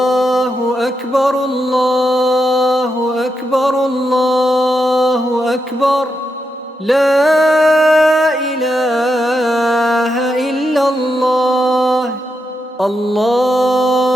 أكبر الله أكبر الله أكبر لا إله إلا الله.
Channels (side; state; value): both; normal; correlation 0.84